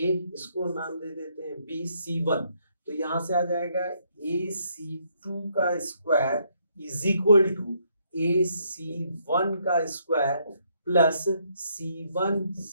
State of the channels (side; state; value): both; inverted; correlation -0.72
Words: इसको नाम दे देते हैं B, C1, तो यहां से आ जाएगा AC2 का square is equal to AC1 का स्क्वायर प्लस C1